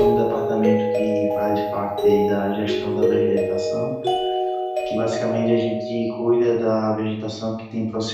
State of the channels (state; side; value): identical; both; correlation 1.00